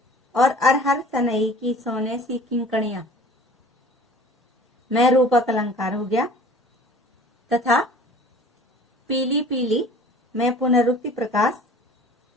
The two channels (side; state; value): both; normal; correlation 0.46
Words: और अरहर सनई की सोने सी किंकणियां में रूपक अलंकार हो गया तथा पीली पीली में पुनरुक्ति प्रकाश